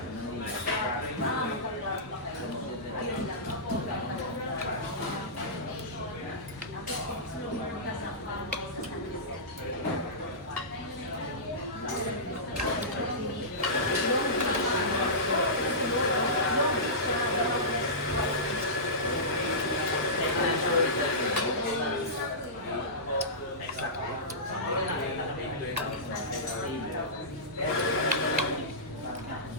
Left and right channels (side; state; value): both; normal; correlation -0.18